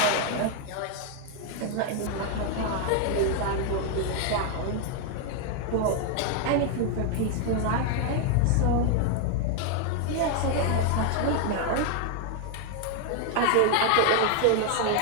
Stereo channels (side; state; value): both; different; correlation 0.00